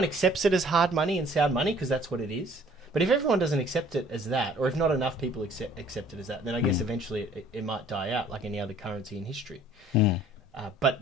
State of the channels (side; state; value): both; normal; correlation 0.56